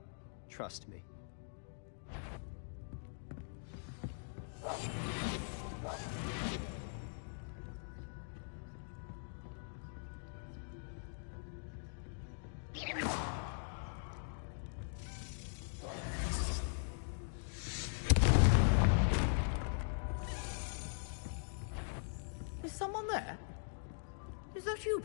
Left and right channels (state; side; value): silent; right; digital silence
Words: Trust me. Is someone there? Is that you,